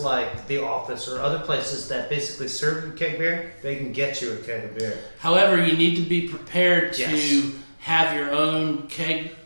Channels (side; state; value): both; inverted; correlation -1.00